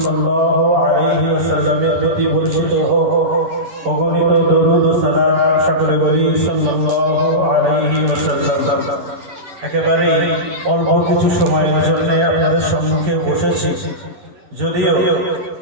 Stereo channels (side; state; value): left; late; 10 ms